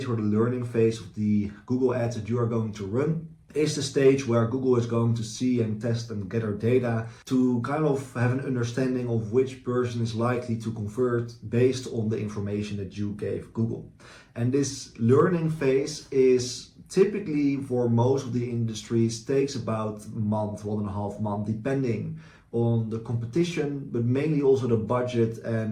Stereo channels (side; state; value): both; identical; correlation 1.00